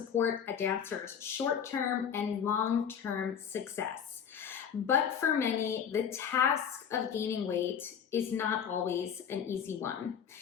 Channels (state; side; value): quieter; right; 7.8 dB